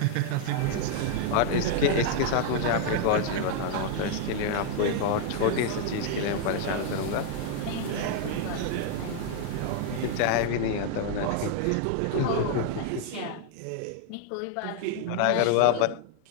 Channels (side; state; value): both; different; correlation 0.00